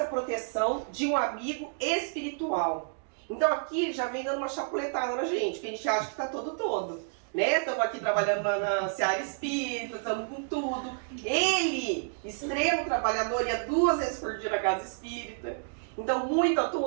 proteção de um amigo espiritual. Então aqui já vem dando uma chapuletada na gente, porque a gente acha que está todo, né? Estamos aqui trabalhando na seara espírita, estamos com tudo. Ele, extremo trabalhador, ia 2 vezes por dia na casa espírita. Então, muito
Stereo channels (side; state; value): left; silent; digital silence